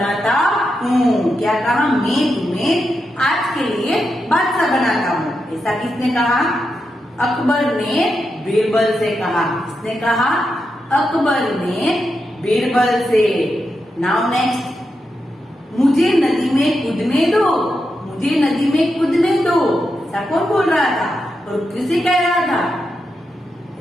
हूँ। क्या कहा? मैं तुम्हें आज के लिए बादशाह बनाता हूँ। ऐसा किसने कहा? अकबर ने बीरबल से कहा। किसने कहा? अकबर ने बीरबल से। नाउ नेक्स्ट, मुझे नदी में कूदने दो, मुझे नदी में कूदने दो। ऐसा कौन बोल रहा था और किसे कह रहा था?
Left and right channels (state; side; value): normal; both; correlation 0.86